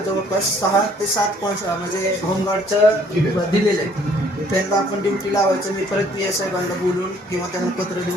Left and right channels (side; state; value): both; normal; correlation 0.60